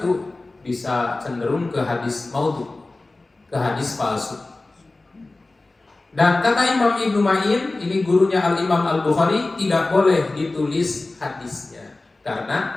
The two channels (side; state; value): right; quieter; 3.1 dB